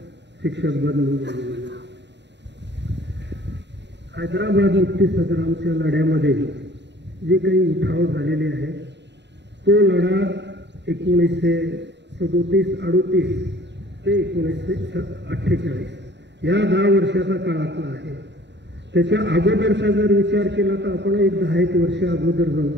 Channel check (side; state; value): left; late; 0.51 ms